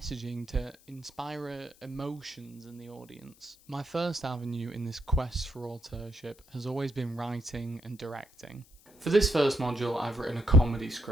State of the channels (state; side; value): noise; left; hiss, 27 dB below the sound